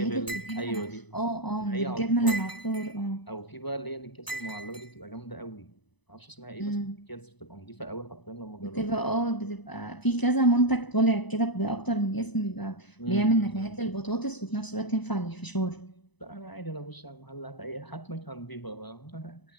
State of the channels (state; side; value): late; right; 1.0 ms